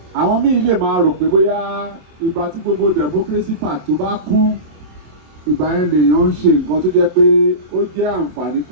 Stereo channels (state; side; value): late; left; 27 ms